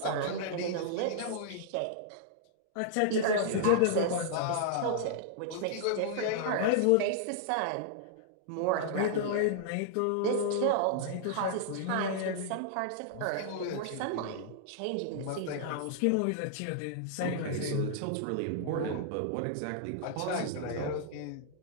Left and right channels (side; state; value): both; different; correlation -0.01